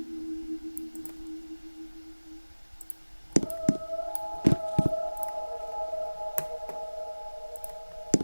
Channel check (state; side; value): inverted; both; correlation -1.00